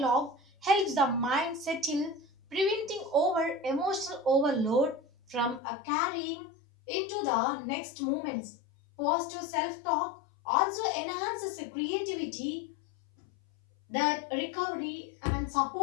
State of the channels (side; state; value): right; drops out; at 5.6 s